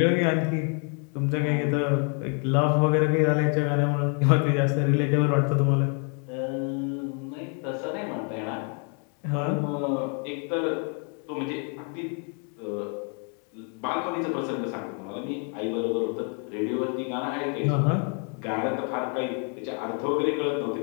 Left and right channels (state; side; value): quieter; right; 39.5 dB